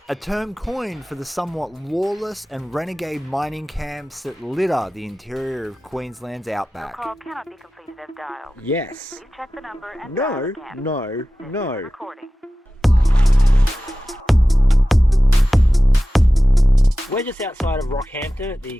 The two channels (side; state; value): both; normal; correlation 0.95